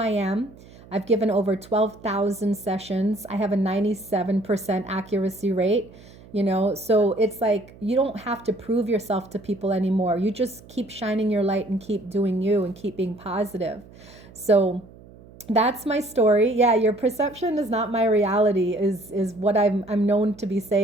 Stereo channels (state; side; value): noise; right; hum, 22 dB below the sound